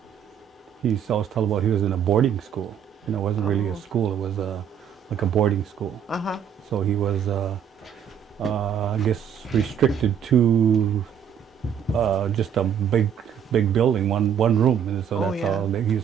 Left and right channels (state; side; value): quieter; left; 8.5 dB